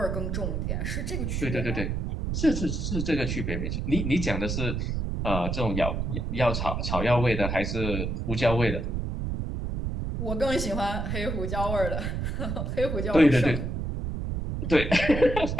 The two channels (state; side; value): noise; right; rumble, 2 dB below the sound